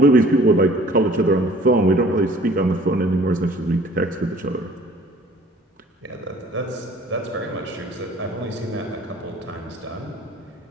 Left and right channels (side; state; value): both; normal; correlation 0.52